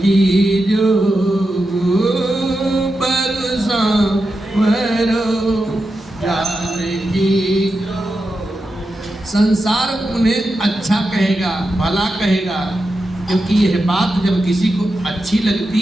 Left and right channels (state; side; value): normal; both; correlation 0.89